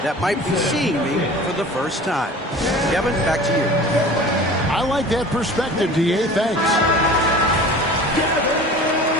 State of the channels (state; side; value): normal; both; correlation 0.41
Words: that might be seeing me for the first time. Kevin, back to you. I like that perspective, D.A. Thanks.